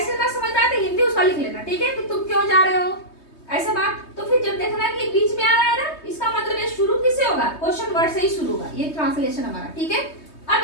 ना समझ में आए तो हिंदी उसका लिख लेना, ठीक है, कि तुम क्यों जा रहे हो ऐसा बात, तो फिर जब देखना कि बीच में आ रहा है ना, इसका मतलब ये शुरू किससे होगा, क्वेश्चन वर्ड से ही शुरू होगा, ये ट्रांसलेशन हमारा, ठीक है। अब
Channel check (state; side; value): late; right; 3.2 ms